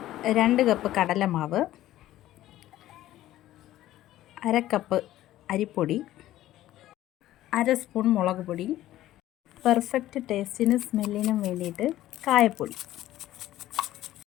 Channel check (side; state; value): right; quieter; 14.3 dB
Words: 2 കപ്പ് കടലമാവ്, 1/2 കപ്പ് അരിപ്പൊടി, 1/2 സ്പൂൺ മുളക് പൊടി, പെർഫെക്റ്റ് ടേസ്റ്റിനും സ്മെല്ലിനും വേണ്ടിയിട്ട് കായപ്പൊടി,